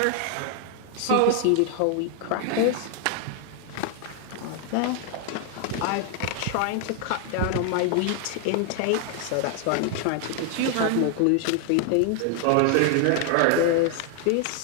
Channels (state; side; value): different; both; correlation 0.00